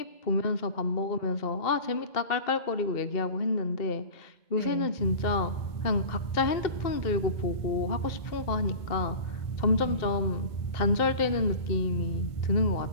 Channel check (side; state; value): right; late; 2.1 ms